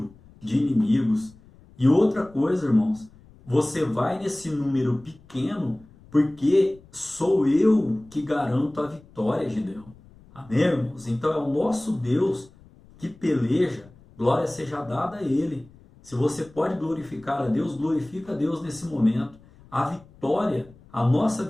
de inimigos. E outra coisa, irmãos, você vai nesse número pequeno porque sou eu que garanto a vitória, Gideão. Amém, irmãos? Então é o nosso Deus que peleja, glória seja dada a Ele. Se você pode glorificar a Deus, glorifica a Deus nesse momento. A vitória, a nossa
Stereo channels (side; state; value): left; noise; rumble, 25 dB below the sound